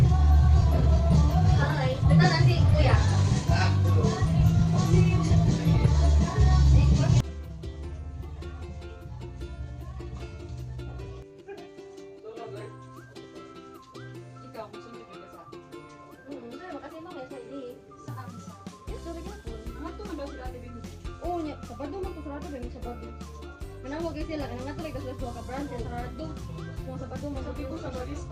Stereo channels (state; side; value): identical; both; correlation 1.00